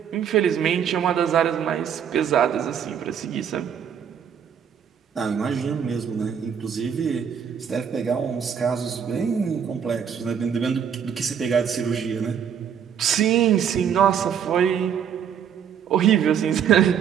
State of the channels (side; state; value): left; quieter; 8.0 dB